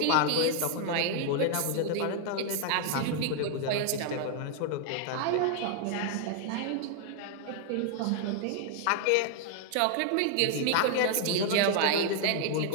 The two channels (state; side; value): different; both; correlation 0.00